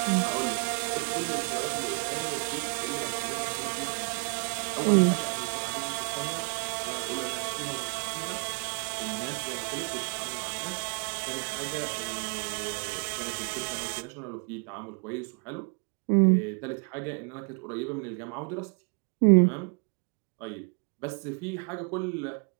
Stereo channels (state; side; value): quieter; left; 39.2 dB